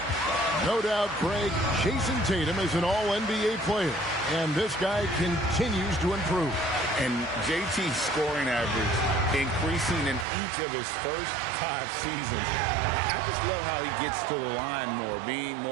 No doubt, Greg, Jason Tatum is an all-NBA player. And this guy continues to improve. And JT's scoring average increasing in each of his first 5 seasons. I just love how he gets to the line more, being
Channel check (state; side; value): drops out; left; at 10.2 s